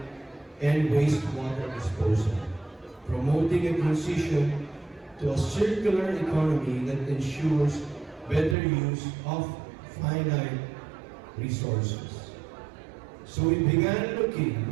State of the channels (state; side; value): drops out; left; at 8.6 s